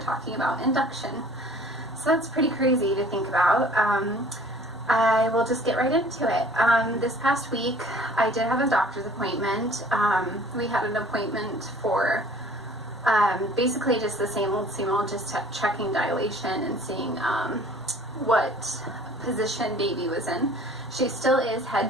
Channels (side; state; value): both; normal; correlation 0.51